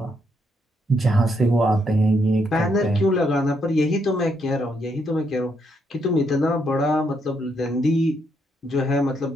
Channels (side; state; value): both; normal; correlation 0.76